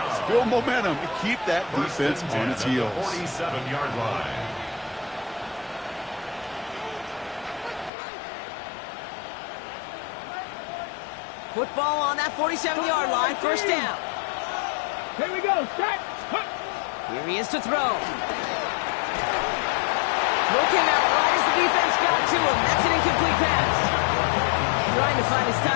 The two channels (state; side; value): drops out; right; at 7.9 s